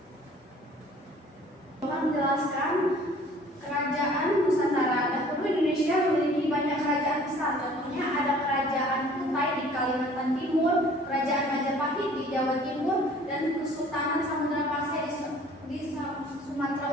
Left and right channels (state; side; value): normal; both; correlation 0.52